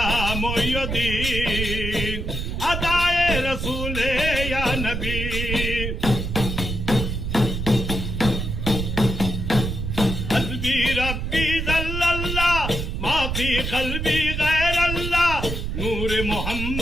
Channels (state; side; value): noise; right; rumble, 3 dB below the sound